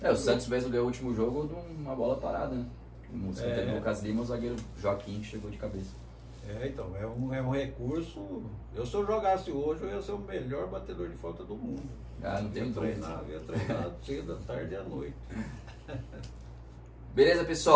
O Santos mesmo ganhou o último jogo de uma bola parada, né? O escanteio do Lucas Lima, o zagueiro Joaquim chegou de cabeça. Então, é um recurso. Se eu jogasse hoje, eu ia ser o melhor batedor de falta do mundo. Não tenho dúvida. Eu ia treinar cedo, à tarde e à noite. Beleza,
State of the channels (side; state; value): both; identical; correlation 1.00